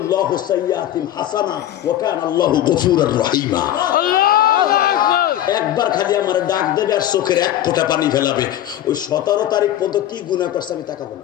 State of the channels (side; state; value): right; quieter; 12.4 dB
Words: সাইয়্যাতিন হাসানা ওয়া কানা আল্লাহু গফুরুর রহিমা। একবার খালি আমার ডাক দেবে আর চোখের এক ফোঁটা পানি ফেলাবে। ওই 17 তারিখ পর্যন্ত কি গুনাহ করছে আমি তাকাবো